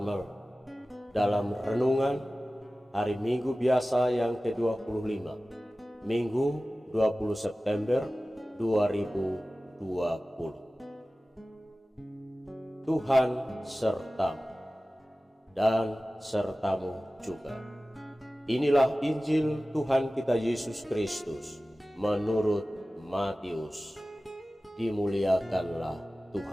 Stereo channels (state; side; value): normal; both; correlation 0.96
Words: dalam renungan hari Minggu biasa yang ke-25, Minggu 20 September 2020. Tuhan sertamu dan sertamu juga. Inilah Injil Tuhan kita Yesus Kristus menurut Matius. Dimuliakanlah